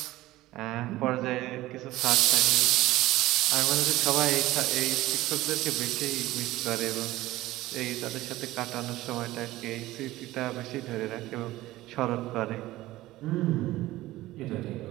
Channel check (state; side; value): quieter; left; 17.0 dB